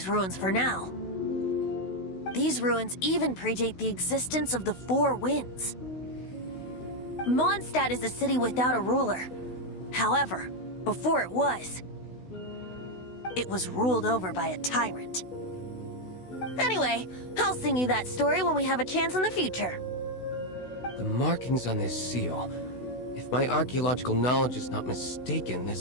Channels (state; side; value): late; right; 16 ms